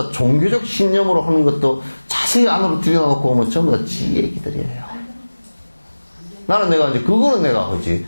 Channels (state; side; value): inverted; both; correlation -1.00